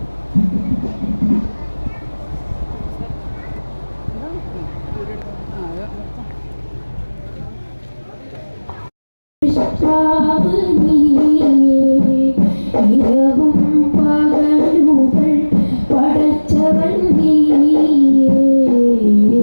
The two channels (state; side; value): inverted; both; correlation -1.00